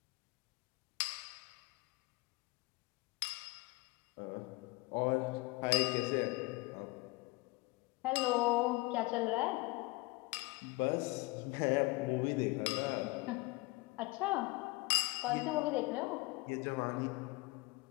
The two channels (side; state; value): right; quieter; 23.9 dB